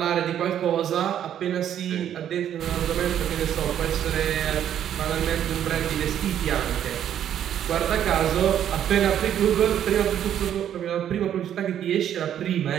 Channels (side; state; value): left; quieter; 10.2 dB